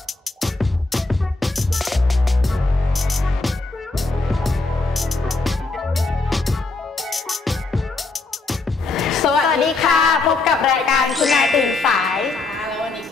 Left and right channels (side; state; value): right; quieter; 3.5 dB